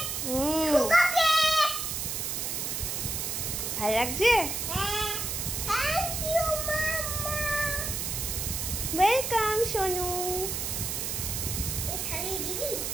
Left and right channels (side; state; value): right; noise; hiss, 2 dB below the sound